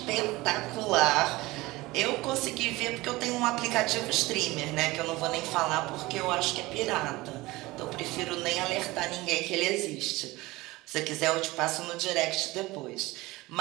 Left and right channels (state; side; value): quieter; left; 20.3 dB